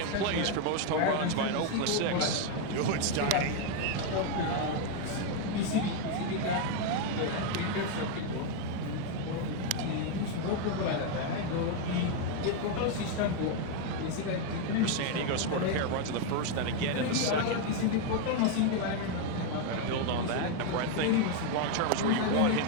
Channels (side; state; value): both; different; correlation 0.01